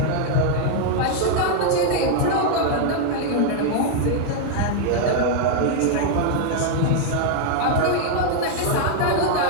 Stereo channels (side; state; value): both; different; correlation 0.00